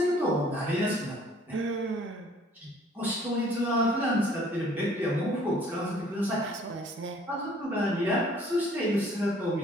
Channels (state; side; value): normal; both; correlation 0.57